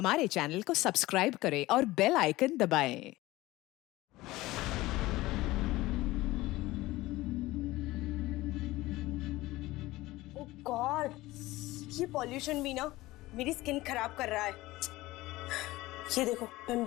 चैनल को सब्सक्राइब करें और बेल आइकन दबाएं। ओह गॉड, ये पॉल्यूशन भी ना मेरी स्किन खराब कर रहा है। ये देखो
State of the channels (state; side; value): quieter; right; 18.5 dB